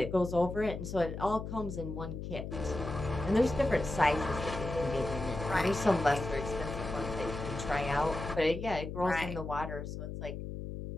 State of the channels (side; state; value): left; noise; hum, 7 dB below the sound